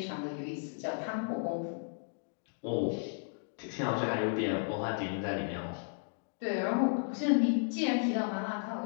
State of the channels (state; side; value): silent; right; digital silence